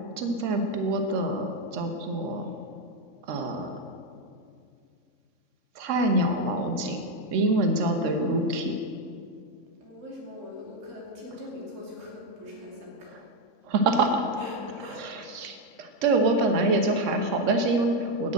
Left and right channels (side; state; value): left; late; 3.6 ms